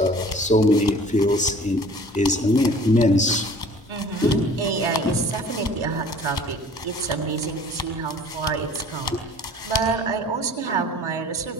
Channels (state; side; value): normal; both; correlation 0.48